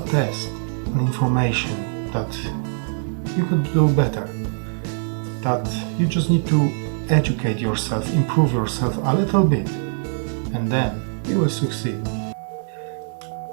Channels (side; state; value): left; silent; digital silence